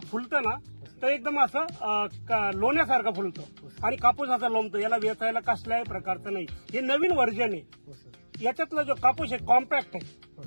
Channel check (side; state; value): both; inverted; correlation -1.00